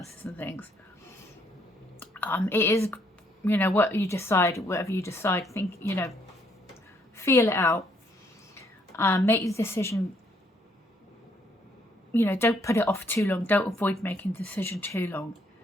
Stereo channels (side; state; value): both; normal; correlation 0.69